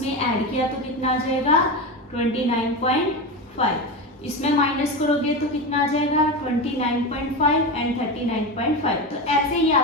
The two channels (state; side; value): normal; both; correlation 0.20